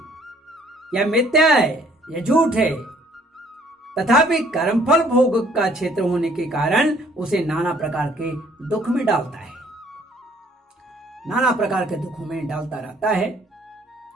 यह मिथ्या है, यह झूठ है, तथापि कर्मफल भोग का क्षेत्र होने के कारण उसे नाना प्रकार के दुख में डालता है, नाना प्रकार के दुखों में डालता रहता है।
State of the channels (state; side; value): normal; both; correlation 0.60